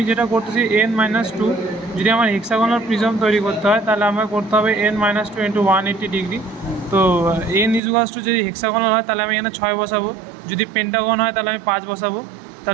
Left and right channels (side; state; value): left; drops out; at 7.8 s